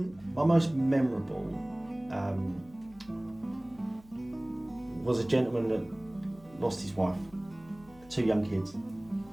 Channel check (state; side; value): noise; left; hum, 24 dB below the sound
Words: My most memorable was a gentleman that lost his wife, 2 young kids,